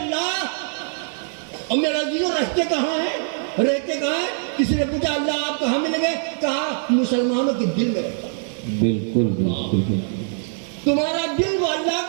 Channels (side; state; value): left; silent; 57 dB below the other